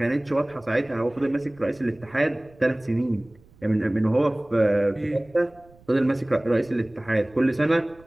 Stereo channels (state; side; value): noise; right; rumble, 27 dB below the sound